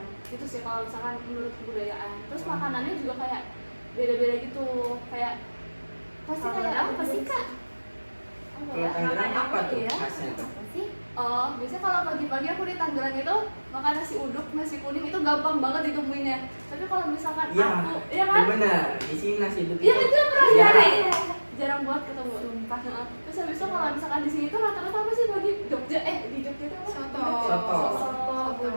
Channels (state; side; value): inverted; both; correlation -1.00